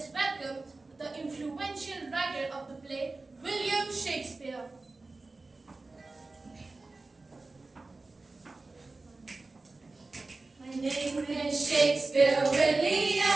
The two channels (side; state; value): left; quieter; 3.5 dB